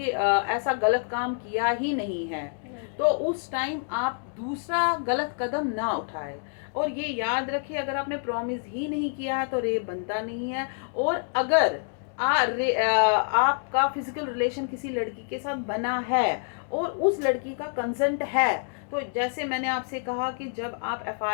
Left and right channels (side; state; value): right; silent; 60 dB below the other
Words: ऐसा गलत काम किया ही नहीं है, तो उस टाइम आप दूसरा गलत कदम ना उठाए। और ये याद रखिए, अगर आपने प्रॉमिस ही नहीं किया है तो रेप बनता नहीं है। और अगर आपका फिजिकल रिलेशन किसी लड़की के साथ बना है और उस लड़की का कंसेंट है। तो जैसे मैंने आपसे कहा कि जब आप